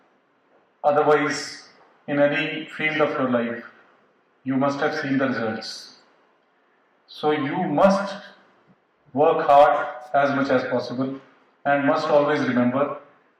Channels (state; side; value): identical; both; correlation 1.00